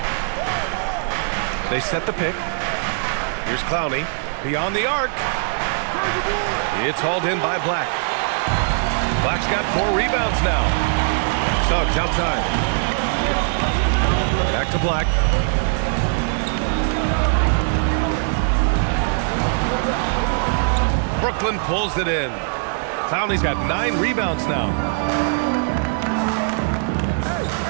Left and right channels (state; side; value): silent; left; digital silence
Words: They set the pick. Here's Clowney. Beyond the arc. It's hauled in by Black. Black's got 4 rebounds now. Suggs outside. Back to Black. Brooklyn pulls it in. Clowney's got 9 rebounds now.